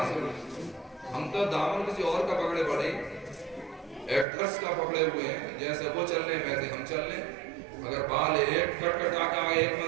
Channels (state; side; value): drops out; left; at 4.2 s